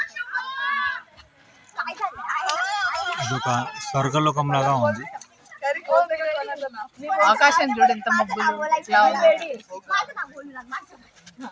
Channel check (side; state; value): both; identical; correlation 1.00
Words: ఇదొక స్వర్గలోకం లాగా ఉంది. ఆకాశం చూడు ఎంత మబ్బులు.